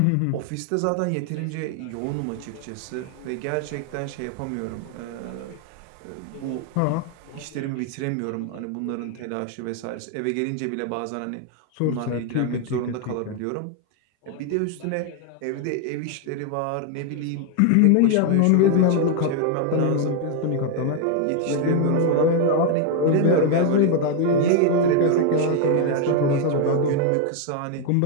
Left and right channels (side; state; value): both; different; correlation 0.00